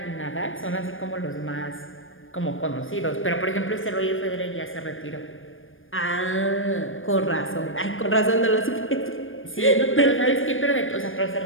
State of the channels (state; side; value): late; right; 0.59 ms